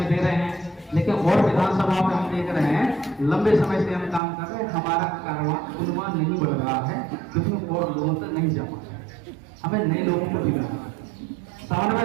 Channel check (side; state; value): left; drops out; at 4.2 s